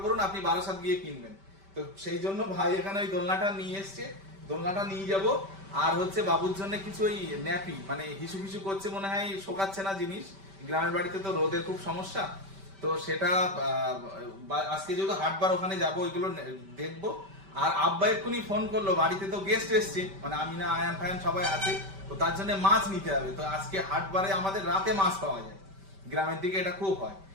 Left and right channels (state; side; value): late; left; 5.1 ms